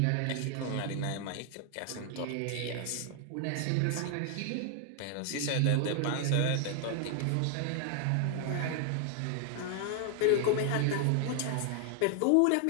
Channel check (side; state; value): both; different; correlation 0.00